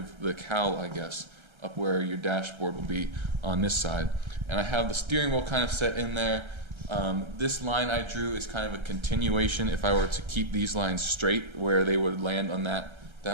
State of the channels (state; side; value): late; left; 1.3 ms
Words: the cowl, I guess, up where your dashboard will be on this side. And I have the steering wheel kind of set in there. This line I drew is kind of a continuation if I were to keep these lines straight where they would land on that